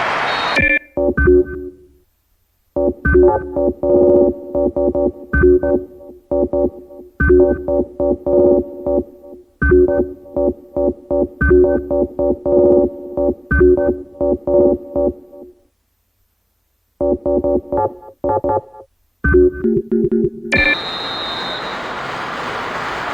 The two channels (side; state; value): both; identical; correlation 1.00